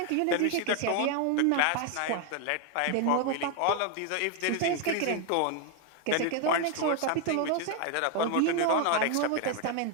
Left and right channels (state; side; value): different; both; correlation 0.01